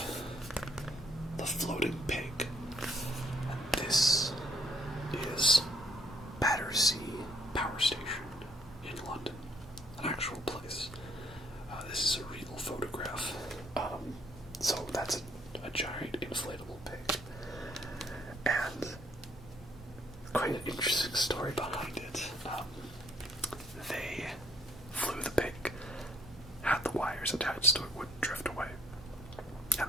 The Floating Pig. And this is Battersea Power Station in London, an actual place. This is a real photograph. So that's a giant inflatable pig. And quite an interesting story behind it. They flew the pig, had the wires attached so it wouldn't drift away,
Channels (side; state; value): both; normal; correlation 0.66